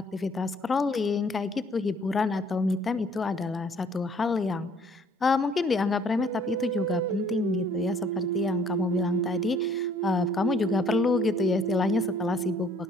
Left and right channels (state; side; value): normal; both; correlation 0.59